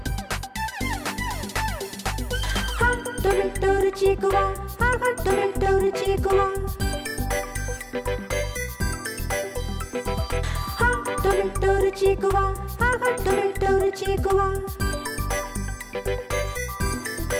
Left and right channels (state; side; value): identical; both; correlation 1.00